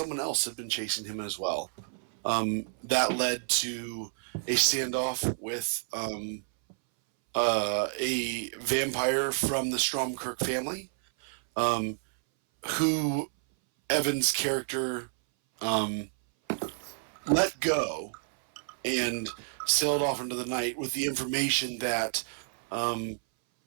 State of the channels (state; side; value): silent; left; 58 dB below the other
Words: else had been chasing him as well. That led to a standoff with a vampire from the Stromkirk family, who Evan's character let go and sailed off into the night with the information that